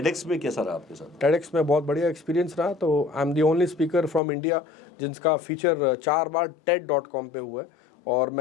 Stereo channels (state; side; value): drops out; right; at 4.2 s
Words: में कैसा रहा आपके साथ? टेडेक्स में बहुत बढ़िया एक्सपीरियंस रहा। तो I am the only speaker from India जिसका फीचर 4 बार TED.com पे हुआ है, और